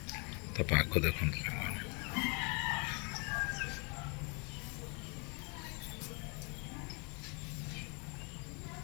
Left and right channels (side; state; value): right; quieter; 33.7 dB